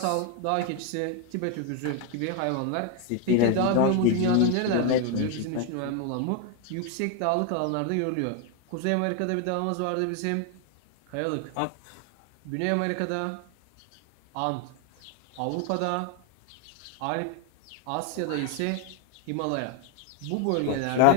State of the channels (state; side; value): different; both; correlation 0.01